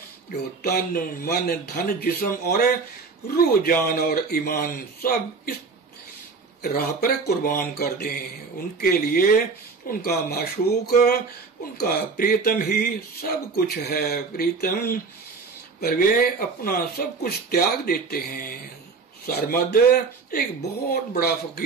जो तन मन धन जिस्म और रूह जान और ईमान सब इस राह पर कुर्बान कर दें। उनके लिए उनका माशूक, उनका प्रियतम ही सब कुछ है। प्रियतम पर वे अपना सब कुछ त्याग देते हैं। सरमद एक बहुत बड़ा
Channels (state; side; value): quieter; left; 4.6 dB